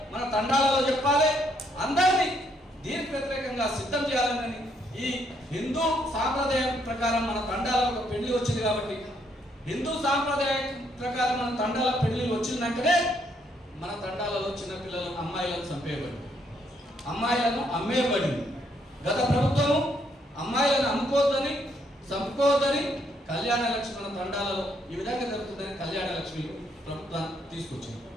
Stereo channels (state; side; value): normal; both; correlation 0.72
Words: మన తండాలలో చెప్పాలి, అందరినీ దీనికి వ్యతిరేకంగా సిద్ధం చేయాలని. ఈ హిందూ సాంప్రదాయం ప్రకారం మన తండాలలో ఒక పెళ్లి వచ్చింది. కాబట్టి హిందూ సాంప్రదాయం ప్రకారం మన తండాల పెళ్లి వచ్చినాకనే మన తండాలలో చిన్నపిల్లలు అమ్మాయిలను చంపేయబడి, అమ్మాయిలను అమ్మేయబడింది. గత ప్రభుత్వము అమ్మాయిలను అమ్ముకోవద్దని, చంపుకోవద్దని కళ్యాణ లక్ష్మి మన తండాలలో ఈ విధంగా జరుగుతుందని కళ్యాణ లక్ష్మి ప్రభుత్వాన్ని తీసుకొచ్చింది.